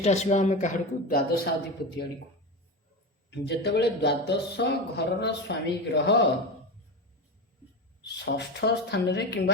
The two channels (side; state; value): both; normal; correlation 0.21